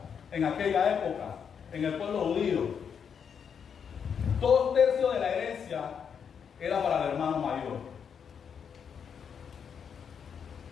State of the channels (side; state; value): right; quieter; 7.2 dB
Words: en aquella época, en el pueblo judío, 2/3 de la herencia era para el hermano mayor.